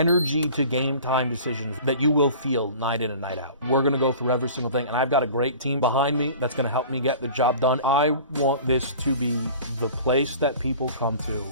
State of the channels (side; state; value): both; inverted; correlation -0.43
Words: to game time decisions that you will feel night in and night out. We're going to go through every single thing, and I've got a great team behind me that's going to help me get the job done. I want this to be the place that people come to.